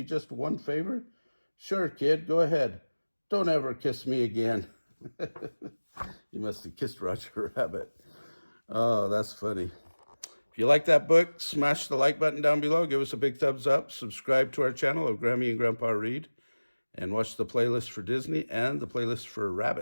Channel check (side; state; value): both; inverted; correlation -1.00